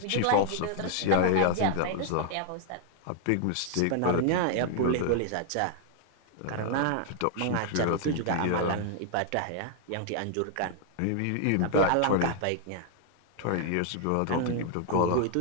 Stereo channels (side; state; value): both; different; correlation 0.00